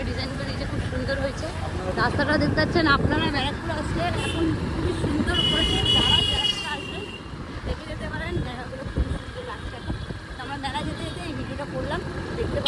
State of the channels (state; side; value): identical; both; correlation 1.00